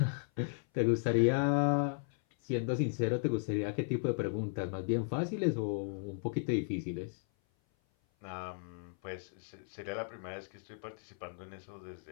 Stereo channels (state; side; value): silent; right; 54 dB below the other